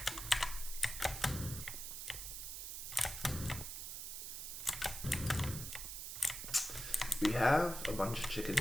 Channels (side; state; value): right; noise; hiss, 6 dB below the sound